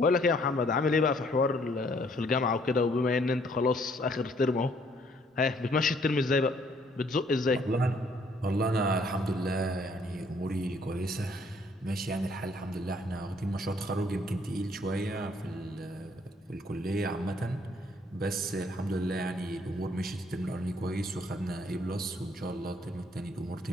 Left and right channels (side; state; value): both; normal; correlation 0.64